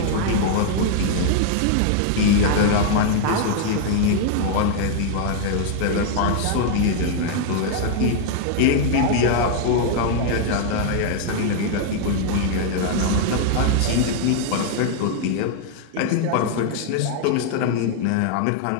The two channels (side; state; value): both; different; correlation -0.01